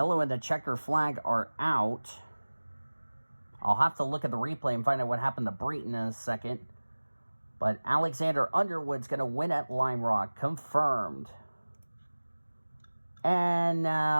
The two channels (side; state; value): both; inverted; correlation -1.00